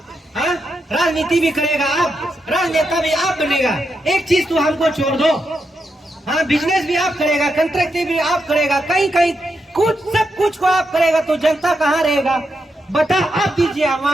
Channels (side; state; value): both; normal; correlation 0.84